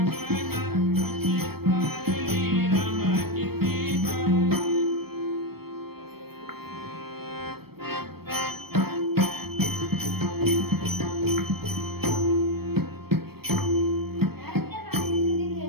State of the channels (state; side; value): late; left; 0.96 ms